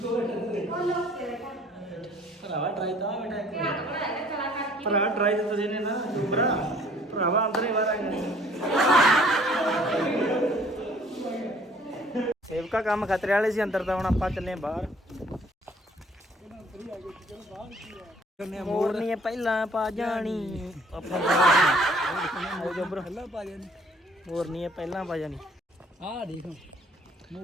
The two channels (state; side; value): normal; both; correlation 0.57